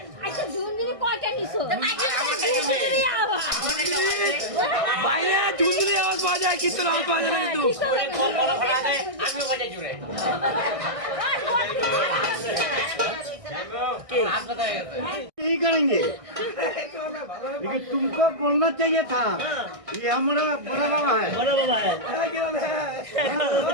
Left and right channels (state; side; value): late; left; 1.6 ms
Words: अच्छा झुनझुनी कয়টা নিছো झुनঝুনি আওয়াজ বাইরে ঝুনঝুনি আওয়াজ পাওয়া যায় কীর্তন আওয়াজ পাওয়া যায় না কিন্তু আমিও বাজাই জুড়ে यही करेंगे लेकिन तुमको बोलना चाहिए था ये हमारा बड़ा बाबा है